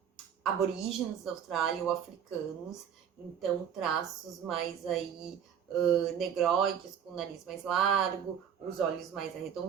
aborígenes da Austrália ou africanos, então traços mais aí negroides, com o nariz mais largo, os olhos mais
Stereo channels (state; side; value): quieter; left; 8.4 dB